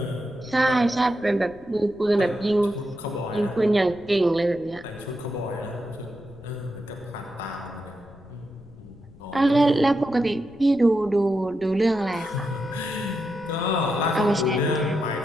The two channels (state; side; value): noise; left; rumble, 23 dB below the sound